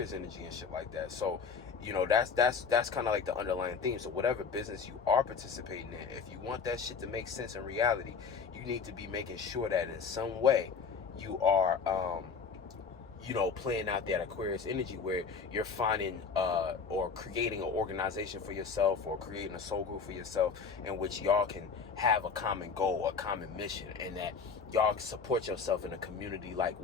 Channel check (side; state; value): right; quieter; 5.5 dB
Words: energy and shit like that. So, you know, that's kind of like the underlying theme. So whatever business you are participating in, if you want that shit to make sense in reality, you need to be making sure that in some way you are, you know, playing out that Aquarius energy, where you're finding or creating an organization for yourself, or creating a soul group for yourself, in which y'all can have a common goal, a common mission, and that y'all can support yourself in a community like